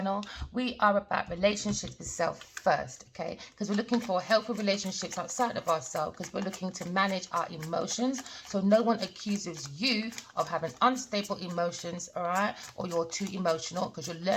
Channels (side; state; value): both; identical; correlation 1.00